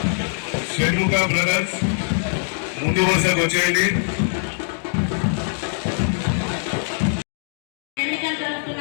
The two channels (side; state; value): right; silent; digital silence